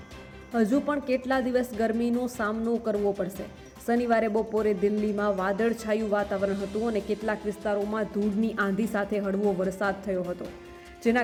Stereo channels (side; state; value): both; identical; correlation 1.00